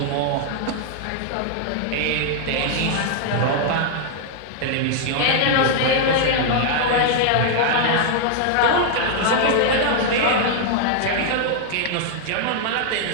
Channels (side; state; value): both; different; correlation 0.00